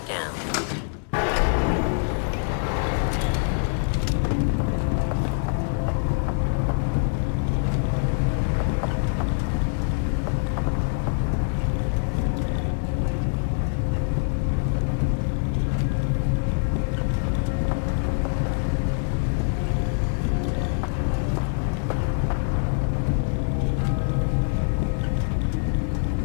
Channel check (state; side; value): silent; right; 62 dB below the other